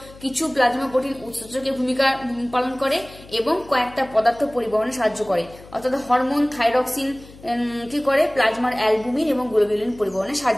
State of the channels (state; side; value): noise; left; hum, 20 dB below the sound